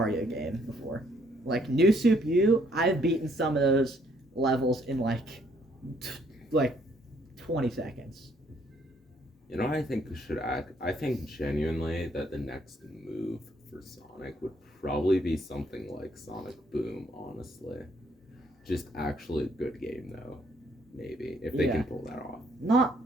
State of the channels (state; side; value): normal; both; correlation 0.67